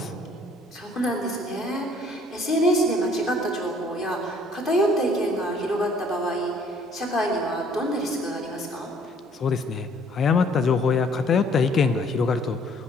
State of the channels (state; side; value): normal; both; correlation 0.60